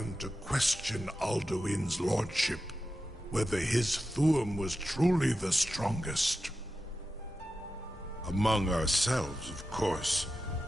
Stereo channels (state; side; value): normal; both; correlation 0.91